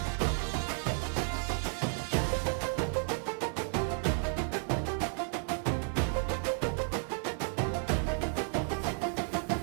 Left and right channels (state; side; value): silent; left; 56 dB below the other